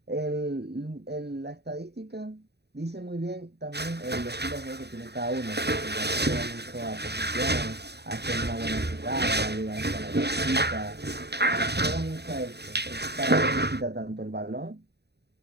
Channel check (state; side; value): late; left; 0.48 ms